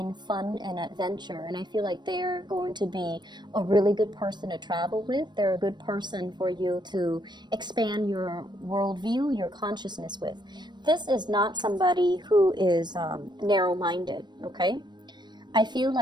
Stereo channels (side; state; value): left; late; 0.21 ms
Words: fun and adventure, and I feel like they're going to be a really good person to travel with. They're a good person for you to expand your worldview, your consciousness with. This is not somebody who is narrow-minded, okay? I feel